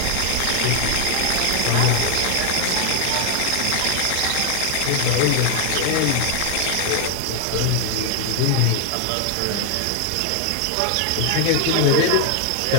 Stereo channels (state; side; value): different; both; correlation 0.00